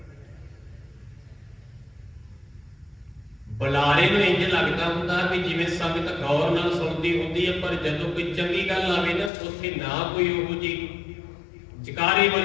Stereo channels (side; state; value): right; drops out; at 9.3 s